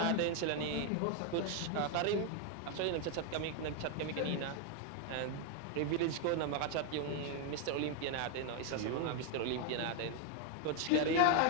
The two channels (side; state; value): both; different; correlation 0.01